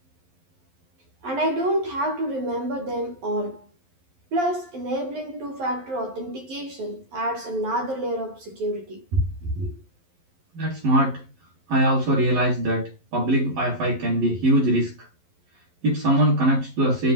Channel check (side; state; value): left; late; 11 ms